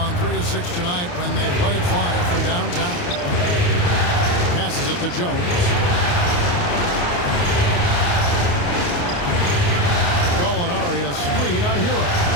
3 of 6 tonight when they let it fly from downtown. Passes it to Jones. Gallinari a screen on Hero.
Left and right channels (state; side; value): late; right; 28 ms